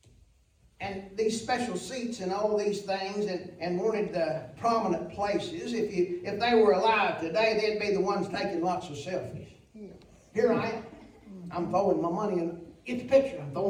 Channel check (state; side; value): identical; both; correlation 1.00